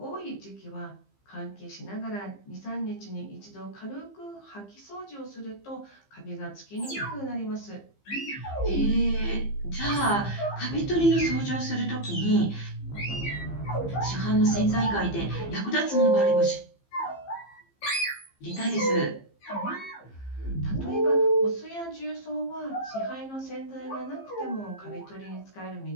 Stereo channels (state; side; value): late; right; 15 ms